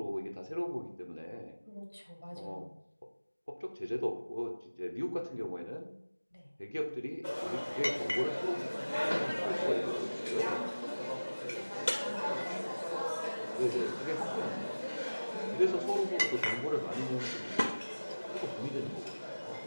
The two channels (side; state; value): both; inverted; correlation -1.00